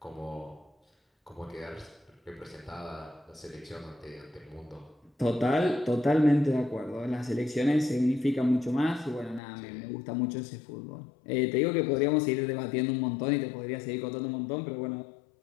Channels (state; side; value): drops out; right; at 9.4 s